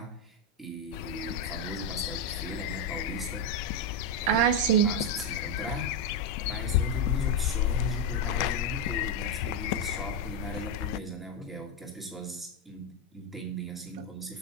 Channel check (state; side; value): normal; both; correlation 0.06